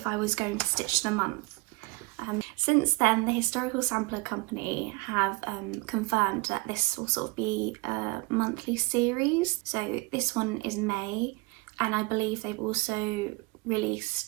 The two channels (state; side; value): quieter; left; 26.5 dB